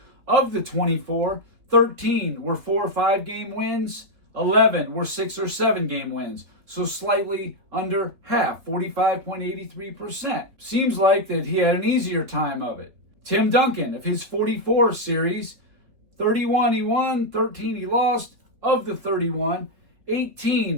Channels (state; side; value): late; left; 3.4 ms